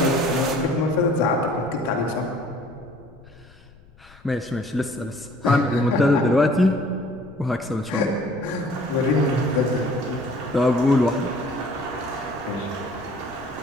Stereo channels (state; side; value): noise; left; rumble, 25 dB below the sound